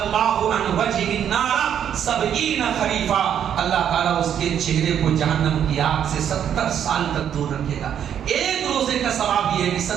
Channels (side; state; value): left; quieter; 9.2 dB